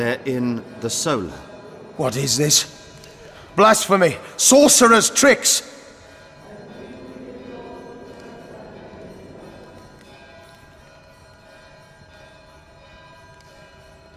in the Solar. What is this? Blasphemy! Sorcerer's tricks!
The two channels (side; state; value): both; identical; correlation 1.00